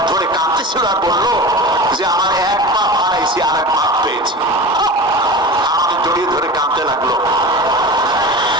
ধরে কাঁদতেছিল আর বললো যে আমার এক পা হারাইছি আর এক পা পেয়েছি। আমাকে জড়িয়ে ধরে কাঁদতে লাগলো।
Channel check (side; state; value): both; normal; correlation 0.32